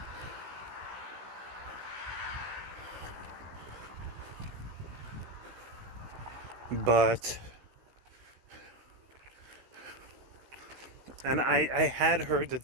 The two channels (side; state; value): left; late; 16 ms